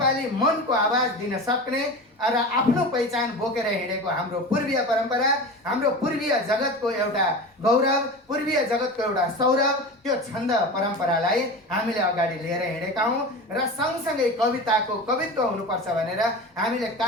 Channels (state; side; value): normal; both; correlation 0.30